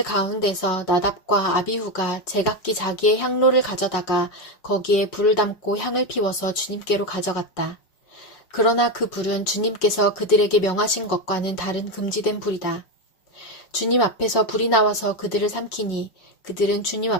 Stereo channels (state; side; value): late; right; 5.4 ms